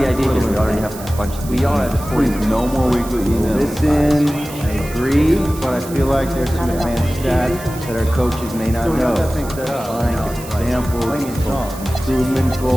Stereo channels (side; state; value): right; noise; hiss, 15 dB below the sound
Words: idea here? We already have a bunch. We all have No more weekly emails. Listen, I agree, but I feel like there's some advanced stats that our coaches may not know. Like examples, improvement